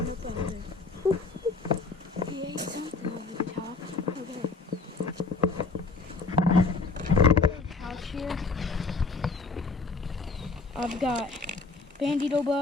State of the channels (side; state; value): right; quieter; 4.0 dB